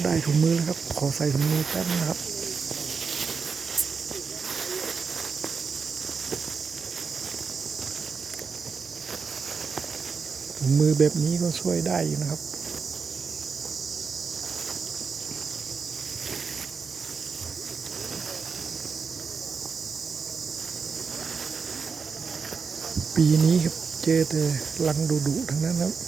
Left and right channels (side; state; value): left; quieter; 5.4 dB